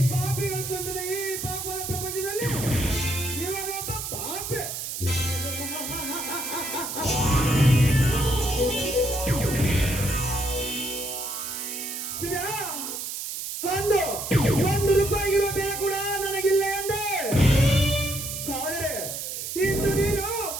ಪಾಪಿಗಳ ತುಂಬಿದ ಈ ಪಾಪದ ಪ್ರಪಂಚದಲ್ಲಿ ಇವನೊಬ್ಬ ಪಾಪೆ. ಶಿವ, ಅಂದು 1 ರೂಪಾಯಿಗಿರುವ ಬೆಲೆ ಕೂಡ ನನಗಿಲ್ಲ ಎಂದೆ. ಆದರೆ ಇಂದು ನೀನು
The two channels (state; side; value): noise; right; hiss, 5 dB below the sound